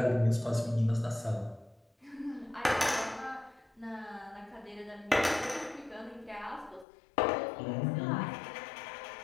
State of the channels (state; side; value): drops out; right; at 6.9 s